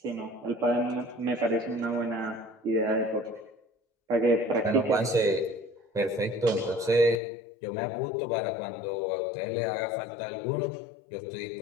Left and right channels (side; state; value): right; drops out; at 7.2 s